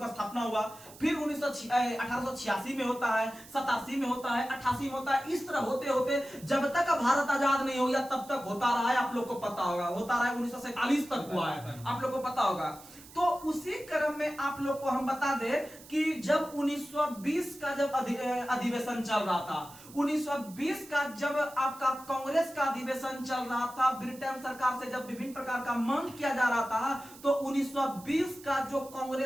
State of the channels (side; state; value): right; noise; hiss, 20 dB below the sound